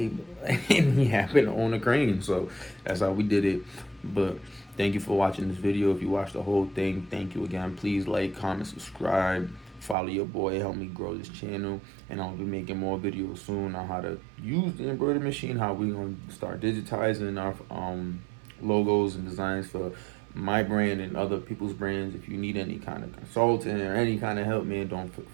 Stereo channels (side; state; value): left; drops out; at 10.0 s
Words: And he happened to own a crane, so that's how we did it. But thank you for watching this video. If you watched the whole thing, thank you again. Please like, comment, subscribe, follow your boy, help me grow this channel. And I'll be making more videos soon on how to use the embroidery machine, how we gonna start digitizing our logos and designs for my brand and other people's brands. If you need any kind of consulting or any kind of help, man, don't